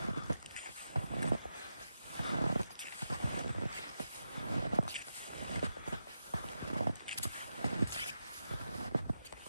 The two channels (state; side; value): inverted; both; correlation -0.88